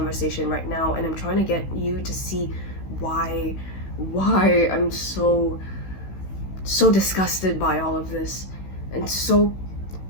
right now and I'm trying to get you to see why I'm so disgusted by all of this and so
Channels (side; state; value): right; late; 16 ms